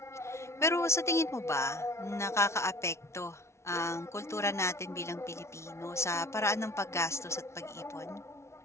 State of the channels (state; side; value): late; right; 0.13 ms